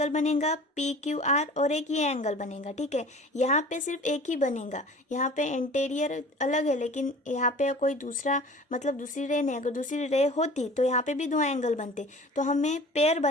बनेगा पी क्यू आर और एक ये एंगल बनेगा। ठीक है, यहाँ पे सिर्फ एक ही बनेगा, यहाँ पे इंटीरियर अलग है लेकिन यहाँ पे कोई दूसरा मतलब दूसरी रे नहीं, अगर दूसरी रे होती तो यहाँ पे भी दो एंगल बनते। तो हमें पेयर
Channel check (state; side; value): normal; both; correlation 0.43